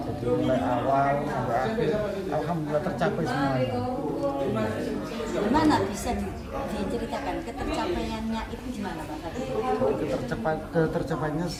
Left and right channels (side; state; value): both; identical; correlation 1.00